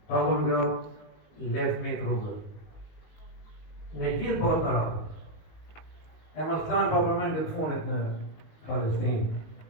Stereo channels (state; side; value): late; right; 19 ms